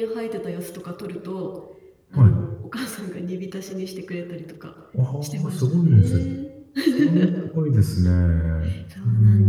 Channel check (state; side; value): identical; both; correlation 1.00